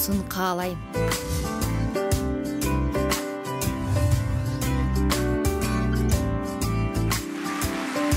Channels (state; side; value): identical; both; correlation 1.00